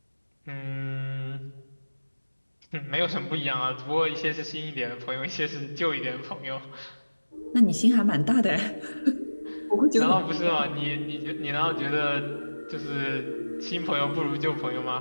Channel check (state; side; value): inverted; both; correlation -1.00